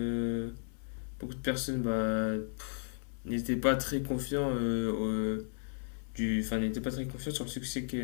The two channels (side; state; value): right; silent; 55 dB below the other